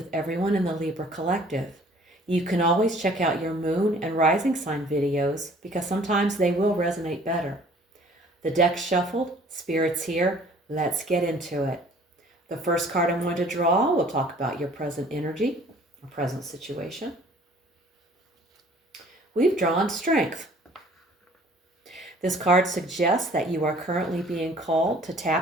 everyone in the Libra collective. You can always check out your Moon and Rising sign videos because sometimes they will resonate better. The deck's shuffled, Spirit's here, let's get into it. The first card I'm going to draw will talk about your present energy, or present situation. We've drawn Strength. This card suggests that you are currently being called to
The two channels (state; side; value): normal; both; correlation 0.54